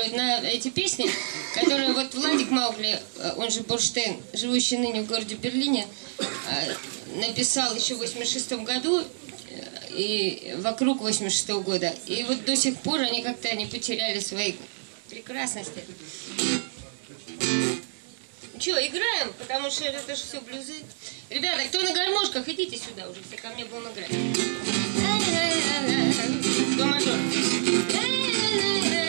на эти песни, которые вот Владик Маугли, он же Бурштейн, живущий ныне в городе Берлине, написал еще в 86-м году и вокруг 86-го года. И вот до сих пор они как-то не потеряли своей прекрасности. Че, играем? Потому что это же все блюзы. Ребята, кто на гармошках, идите сюда уже, все ко мне будем играть. До мажор.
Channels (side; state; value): left; silent; digital silence